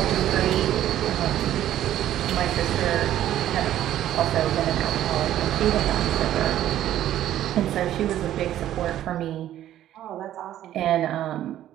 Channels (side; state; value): left; quieter; 12.3 dB